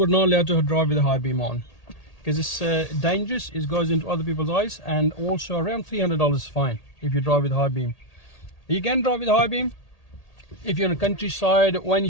not allowed to drive with the high beam on because it's dangerous. It goes into other people's eyes, and also around $300 is fine if you drive with high beam. You can drive with high beam if you're in the countryside or any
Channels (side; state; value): right; late; 1.8 ms